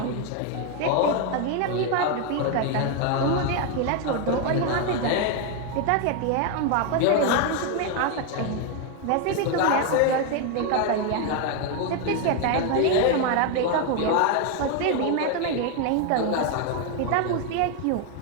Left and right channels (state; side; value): different; both; correlation 0.01